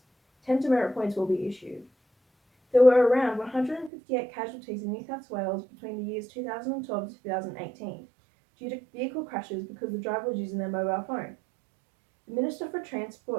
10 demerit points will be issued. There were around 158 casualties in New South Wales between the years 2012 to 2018 due to vehicle crashes because the driver was using their mobile phone. The Minister for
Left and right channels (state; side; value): drops out; left; at 3.9 s